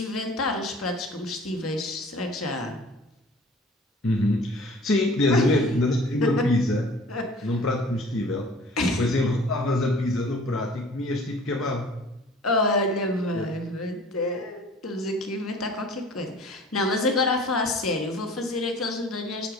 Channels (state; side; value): normal; both; correlation 0.47